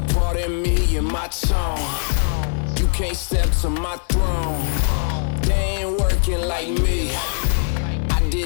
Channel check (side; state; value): right; silent; digital silence